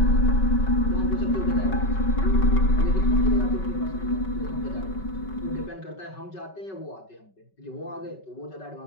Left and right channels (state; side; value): late; right; 5.3 ms